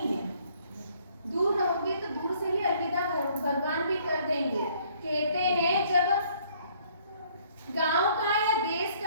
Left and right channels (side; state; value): both; inverted; correlation -0.62